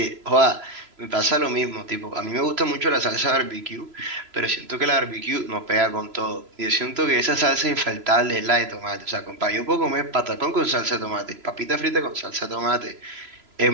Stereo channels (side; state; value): left; late; 3.0 ms